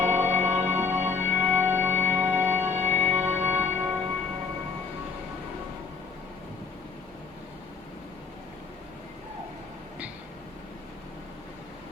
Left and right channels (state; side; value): quieter; right; 5.1 dB